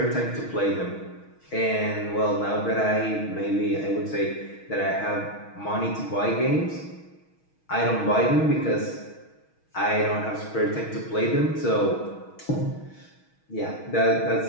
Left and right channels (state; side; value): late; right; 6.3 ms